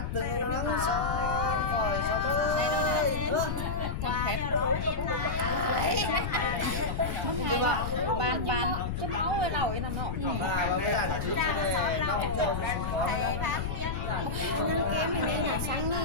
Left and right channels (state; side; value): noise; left; rumble, 3 dB below the sound